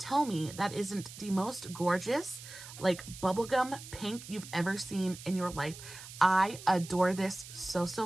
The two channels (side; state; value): right; noise; hiss, 14 dB below the sound